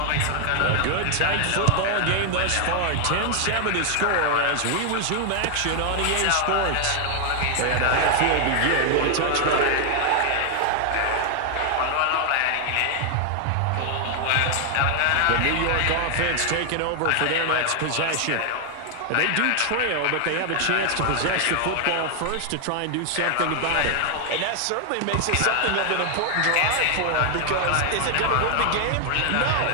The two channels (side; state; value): both; different; correlation 0.00